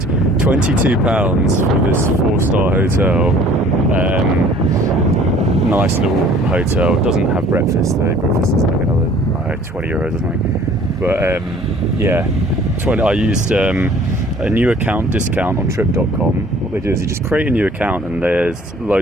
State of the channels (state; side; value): normal; both; correlation 0.53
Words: for this 4-star hotel. Nice little hotel. It doesn't have breakfast though. Breakfast is like another €20 or something. But I used a new account discount on Trip.com. What they do is you just create a new account, and there's